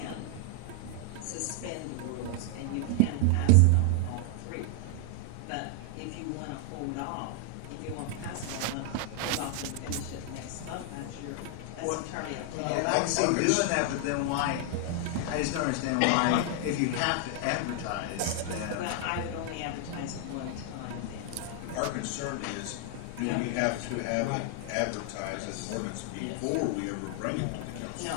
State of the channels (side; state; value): both; different; correlation 0.00